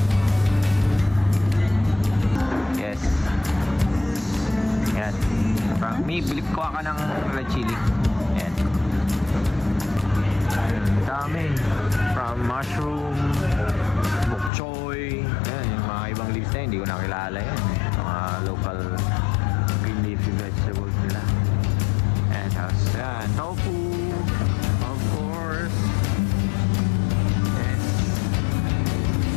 Yes. Yan. Me, bilip ko ka ng red chili. Yan. Dami. From mushroom, bok choy. Yan, yung mga ibang leaves na yun, hindi ko nakilala yan. Mga local green leafy vegetables nila. And tapos, yan, tofu. Of course. Yes.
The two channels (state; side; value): drops out; right; at 14.5 s